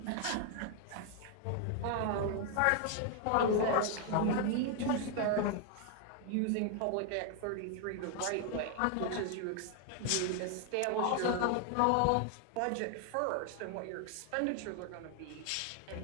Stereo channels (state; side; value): different; both; correlation 0.00